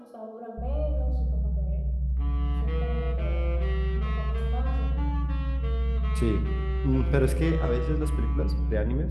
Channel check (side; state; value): both; identical; correlation 1.00